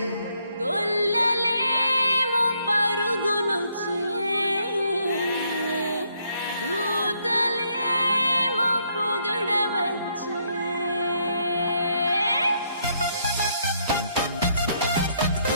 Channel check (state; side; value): inverted; both; correlation -0.72